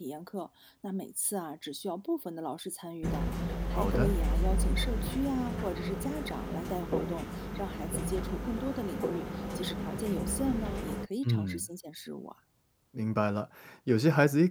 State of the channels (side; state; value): both; identical; correlation 1.00